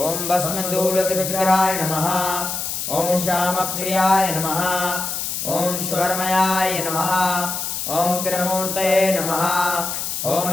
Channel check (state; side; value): noise; left; hiss, 3 dB below the sound